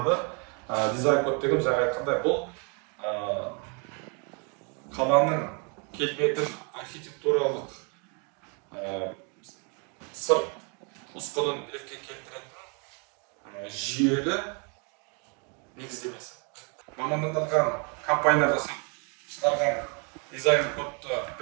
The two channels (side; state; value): left; quieter; 36.0 dB